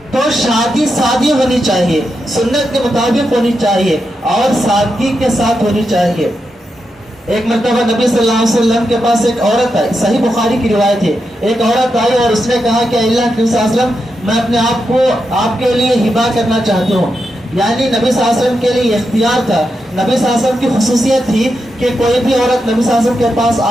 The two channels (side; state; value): both; normal; correlation 0.86